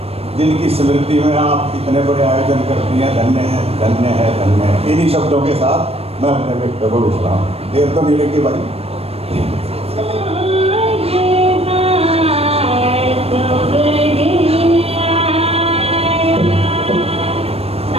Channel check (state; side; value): late; left; 0.29 ms